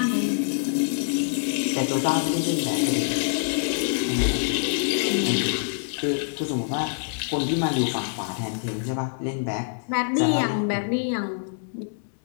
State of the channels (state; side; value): silent; right; digital silence